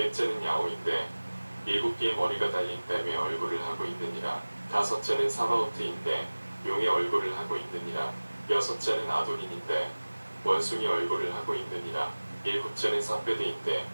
야오인데 일곱 개의 머리가 달린 뱀의 얼굴을 하고 있느니라. 다섯째는 사바오트인데 용의 얼굴을 하고 있느니라. 여섯째는 아도닌인데 원숭이 얼굴을 하고 있느니라. 일곱째는 사페드인데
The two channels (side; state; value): both; inverted; correlation -1.00